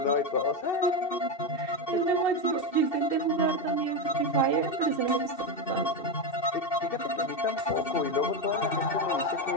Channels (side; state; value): right; late; 2.7 ms